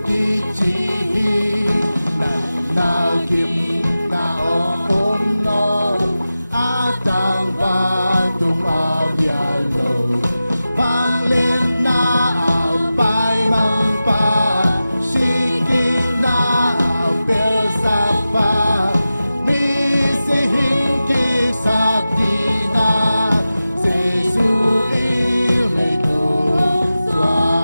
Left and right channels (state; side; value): inverted; both; correlation -0.94